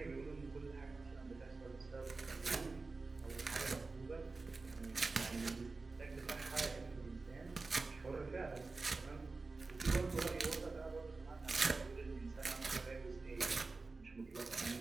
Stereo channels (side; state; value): left; quieter; 3.8 dB